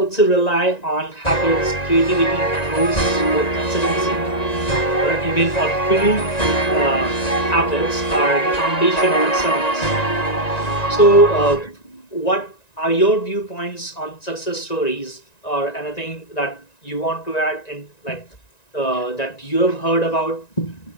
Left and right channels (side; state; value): right; late; 1.9 ms